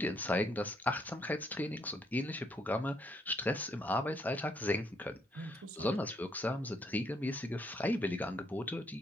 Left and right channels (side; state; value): both; normal; correlation 0.71